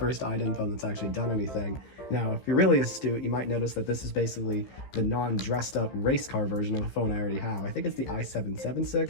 iDen phone that's actually done anything. Now, if you're really astute, you might notice that this is basically the non-dressed up race car version of a phone I already have. I think it's the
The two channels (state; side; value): late; right; 15 ms